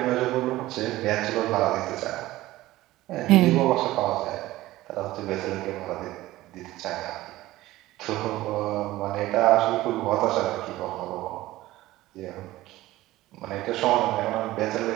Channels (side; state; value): left; quieter; 16.8 dB